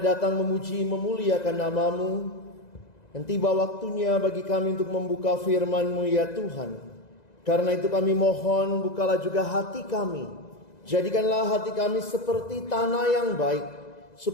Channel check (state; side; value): late; right; 2.0 ms